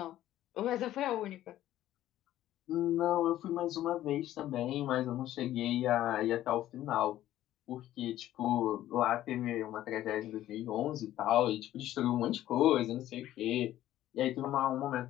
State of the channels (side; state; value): right; quieter; 13.4 dB